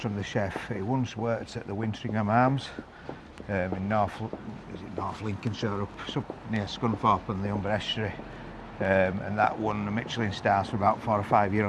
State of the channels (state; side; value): identical; both; correlation 1.00